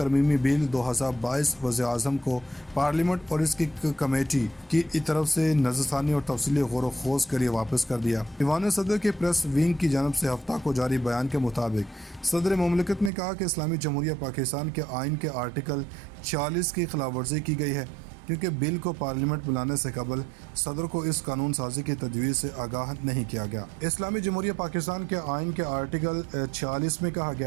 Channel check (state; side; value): drops out; left; at 13.1 s